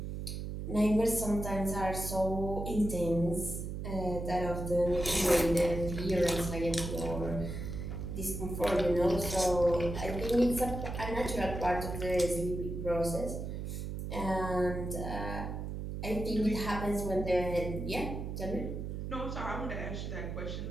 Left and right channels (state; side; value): noise; right; hum, 5 dB below the sound